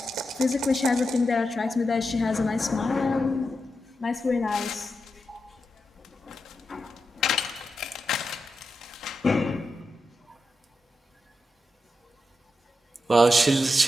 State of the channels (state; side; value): normal; both; correlation 0.88